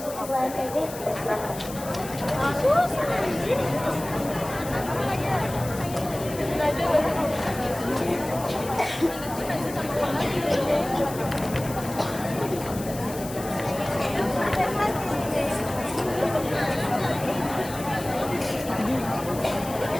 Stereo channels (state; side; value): noise; left; hiss, 13 dB below the sound